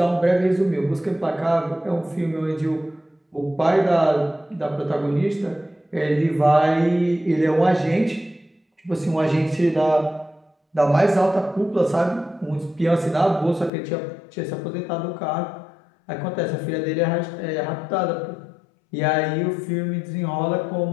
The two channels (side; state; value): right; drops out; at 13.7 s